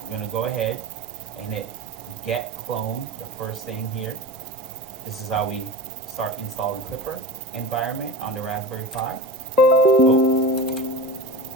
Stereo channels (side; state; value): both; normal; correlation 0.30